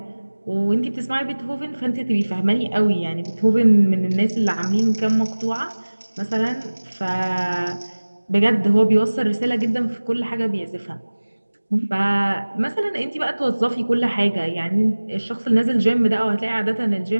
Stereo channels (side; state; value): both; inverted; correlation -1.00